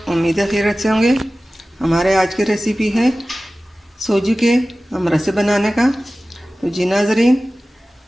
उम्मीद है खैरियत से होंगे। हमारे आज की रेसिपी है सूजी के अमरसे बनाने का। तो जी नाजरीन,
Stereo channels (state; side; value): normal; both; correlation 0.96